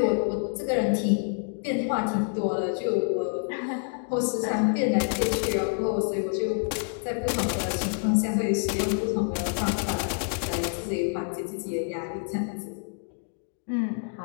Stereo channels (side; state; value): right; silent; 58 dB below the other